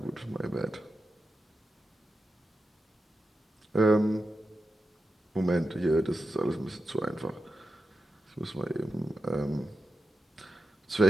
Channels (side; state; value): both; normal; correlation 0.90